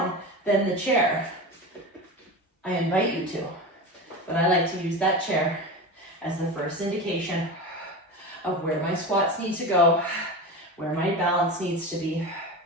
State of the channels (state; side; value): normal; both; correlation 0.26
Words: than the chair, I invite you to, but I like to use that chair as the first indication of where my squats need to go, where my balance needs to be.